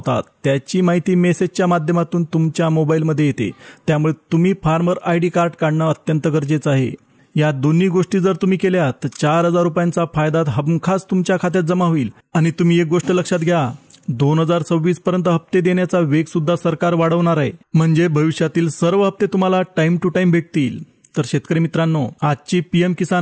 त्याची माहिती मेसेजच्या माध्यमातून तुमच्या मोबाईलमध्ये येते. त्यामुळे तुम्ही फार्मर आयडी कार्ड काढणं अत्यंत गरजेचं आहे. या दोन्ही गोष्टी जर तुम्ही केल्या तर 4,000 रुपयांचा फायदा हमखास तुमच्या खात्यात जमा होईल. आणि तुम्ही एक गोष्ट लक्षात घ्या, 2026 पर्यंत हप्ते देण्याचा वेग सुद्धा सरकार वाढवणार आहे. म्हणजे भविष्यातील सर्व हप्ते तुम्हाला टाइम टू टाइम भेटतील. तर शेतकरी मित्रांनो, आजची पीएम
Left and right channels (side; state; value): both; identical; correlation 1.00